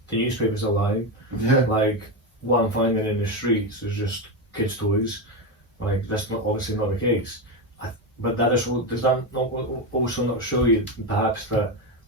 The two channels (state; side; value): normal; both; correlation 0.13